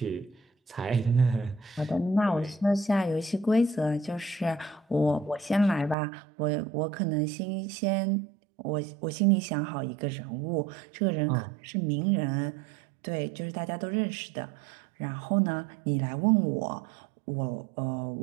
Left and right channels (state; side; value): drops out; left; at 6.0 s